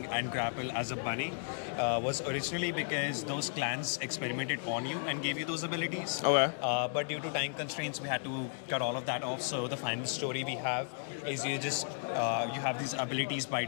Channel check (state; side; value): silent; right; digital silence